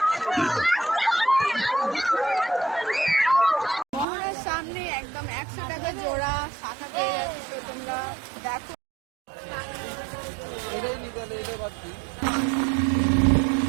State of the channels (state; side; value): drops out; left; at 4.0 s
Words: মোহনার সামনে একদম 100 টাকা জোড়া শাখা পেয়ে যাচ্ছে, তো তোমরা দেখো।